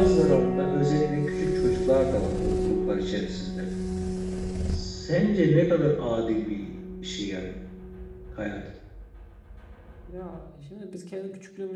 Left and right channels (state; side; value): identical; both; correlation 1.00